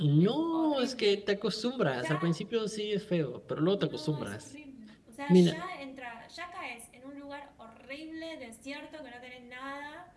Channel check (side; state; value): both; identical; correlation 1.00